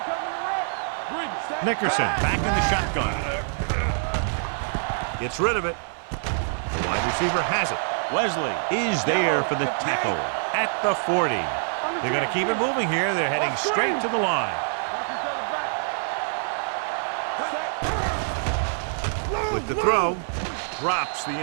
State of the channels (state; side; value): silent; left; digital silence